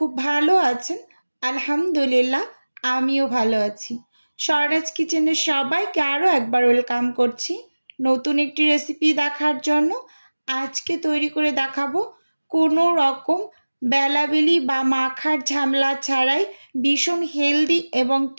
ভালো আছেন। আলহামদুলিল্লাহ, আমিও ভালো আছি। স্বরাজ কিচেনের সবাইকে আরও একবার ওয়েলকাম করছি নতুন একটি রেসিপি দেখার জন্য। আজকে তৈরি করে দেখাবো কোনো রকম বেলাবেলি বা মাখার ঝামেলা ছাড়াই ভীষণ হেলদি এবং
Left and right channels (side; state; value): both; inverted; correlation -1.00